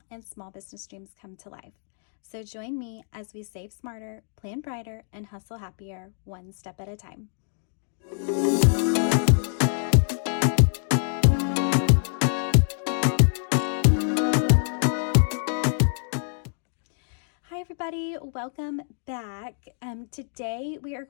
and small business dreams come to life. So join me as we save smarter, plan brighter, and hustle happier one step at a time. Hi everybody, welcome back. Today we are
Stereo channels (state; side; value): silent; right; digital silence